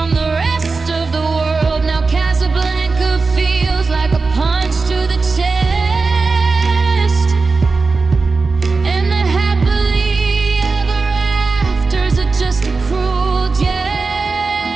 the rest of the world. Now Casablanca feels like a punch to the chest, and the happily ever afters are just a cruel jest.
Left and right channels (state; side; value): quieter; left; 4.1 dB